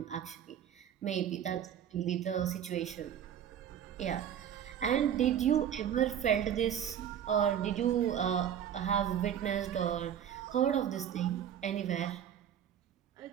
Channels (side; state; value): left; quieter; 9.5 dB